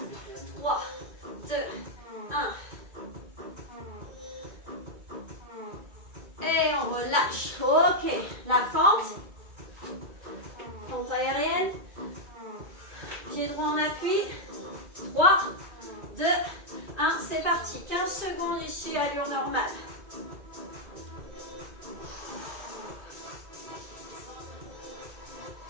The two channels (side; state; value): left; late; 2.2 ms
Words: 3, 2, 1. Et on relâche. Ok. La fente. Fente aérienne. Pied droit en appui. 3, 2, 1. C'est parti. 15 secondes ici, allure normale.